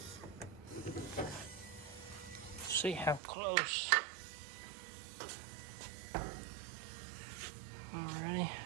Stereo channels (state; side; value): drops out; left; at 3.2 s